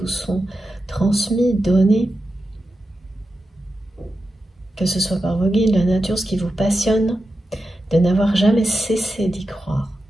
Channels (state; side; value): normal; both; correlation 0.90